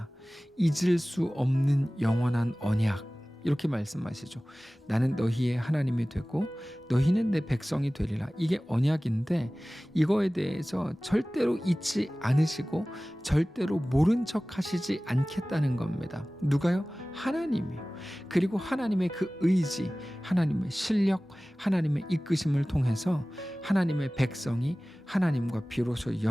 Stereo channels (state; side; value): normal; both; correlation 0.98